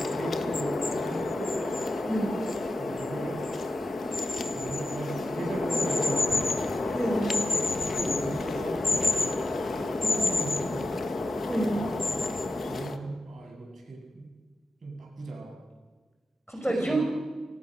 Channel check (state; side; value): normal; both; correlation 0.90